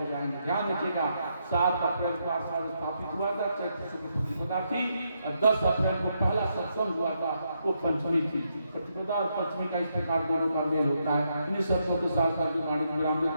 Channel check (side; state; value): both; inverted; correlation -0.80